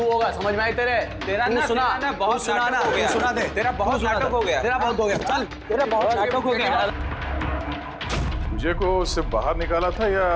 होगा, समझ में आई तेरे? तेरा ना सुना, बहुत सुना ना, नाटक हो गया। सुना दे। तेरा बहुत नाटक हो गया। तेरा बहुत हो गया। चल, तेरा बहुत नाटक हो गया। मुझे को उससे बाहर निकाला था या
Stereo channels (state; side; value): identical; both; correlation 1.00